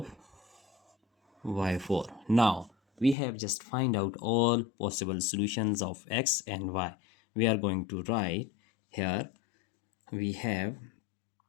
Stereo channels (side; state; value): right; drops out; at 3.2 s